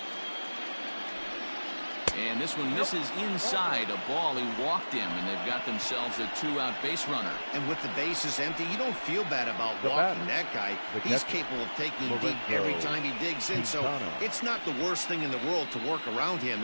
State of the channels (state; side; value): inverted; both; correlation -1.00